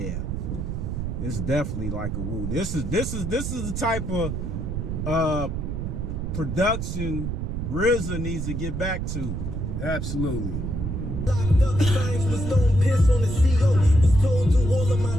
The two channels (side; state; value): right; noise; rumble, 3 dB below the sound